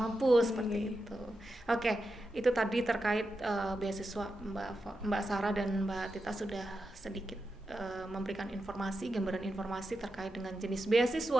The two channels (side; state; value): both; normal; correlation 0.89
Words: mampu seperti itu. Oke, itu tadi terkait beasiswa. Mbak Sarah dan Mbak Tita sudah sedikit memberikan gambaran informasi terkait dengan jenis